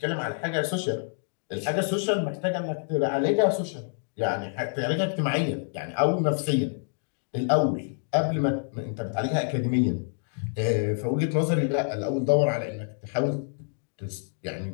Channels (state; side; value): silent; right; digital silence